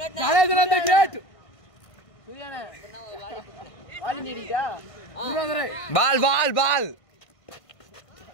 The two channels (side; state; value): right; late; 1.5 ms